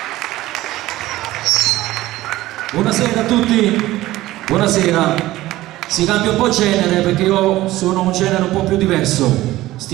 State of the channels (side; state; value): left; quieter; 16.5 dB